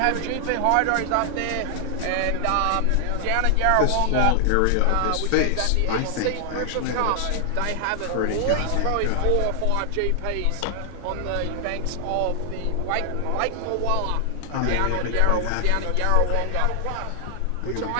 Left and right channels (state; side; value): different; both; correlation 0.00